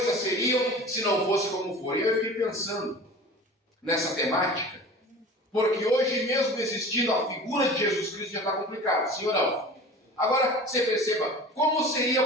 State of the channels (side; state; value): both; normal; correlation 0.39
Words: seriam se não fosse como foram. E eu fiquei pensando nessa temática, porque hoje mesmo existindo a figura de Jesus Cristo já está complicado, sim ou não? Agora, você perceba, como seria,